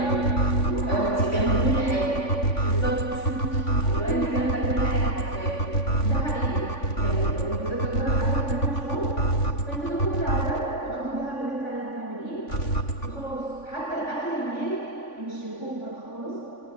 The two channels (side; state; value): right; late; 3.5 ms